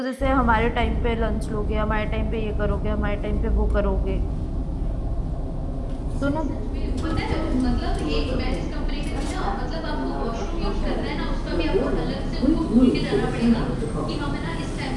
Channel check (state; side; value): identical; both; correlation 1.00